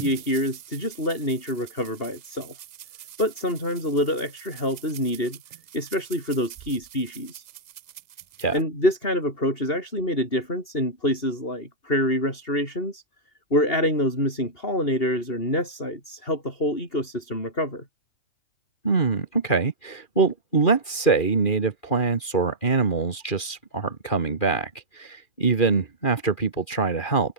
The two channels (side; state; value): right; late; 2.4 ms